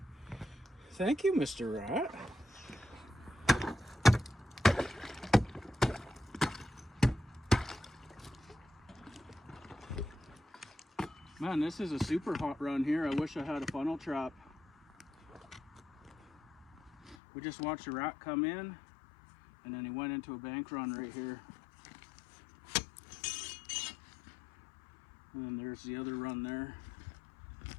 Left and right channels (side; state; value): right; drops out; at 17.2 s